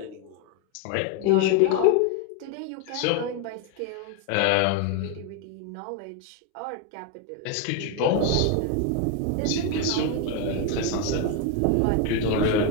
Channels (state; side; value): different; both; correlation 0.01